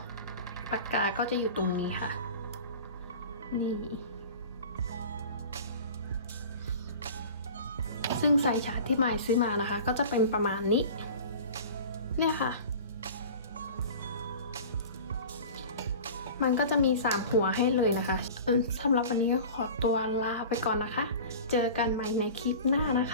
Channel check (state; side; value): inverted; both; correlation -0.38